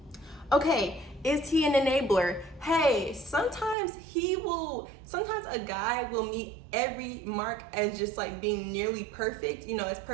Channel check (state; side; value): drops out; left; at 3.8 s